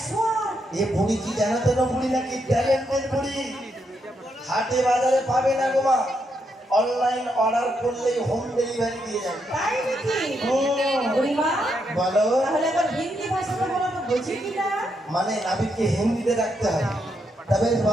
এ বুড়ি কি জানাতে না? বুড়ি নাকি ট্যালেন্টেড বুড়ি। হাটে বাজারে পাবে না গো মা। অনলাইন অর্ডার করলেই হোম ডেলিভারি দিয়ে যাবে। তাই নাকি? বুড়িমা বলো। তাহলে আবার হিন্দি ভাষাটা বলো তো, বুঝি কি না? মানে নাবিককে হিন্দিতে ডাকতে হয়। তবে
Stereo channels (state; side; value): normal; both; correlation 0.79